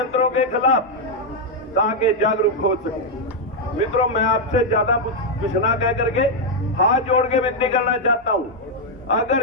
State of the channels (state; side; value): normal; both; correlation -0.01